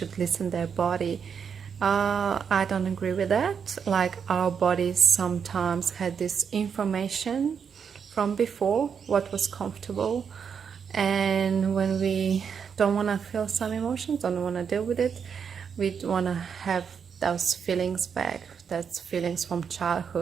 listen to their body, I don't agree with that. Like, our bodies sometimes had this information from before what was comfortable, and when we don't want to feel some emotions, don't want to deal with it, we want to have those feelings back. That's feelings from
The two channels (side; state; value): left; quieter; 6.8 dB